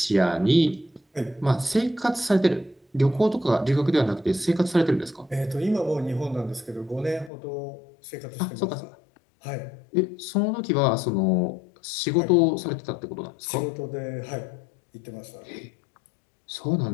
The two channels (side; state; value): right; drops out; at 7.3 s